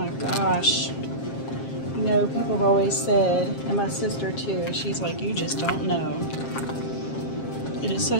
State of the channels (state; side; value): late; right; 7.5 ms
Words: gosh. You know, people have always said, and my sister too, she's like, you just don't know. It is